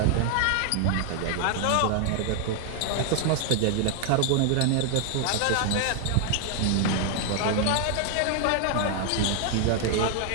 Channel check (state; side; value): different; both; correlation 0.00